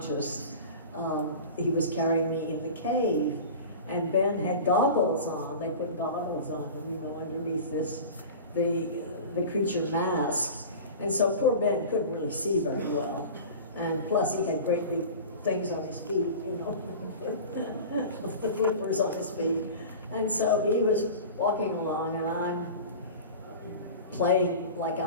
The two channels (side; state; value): both; inverted; correlation -0.35